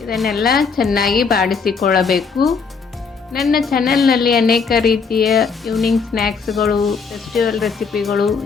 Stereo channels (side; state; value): right; quieter; 5.3 dB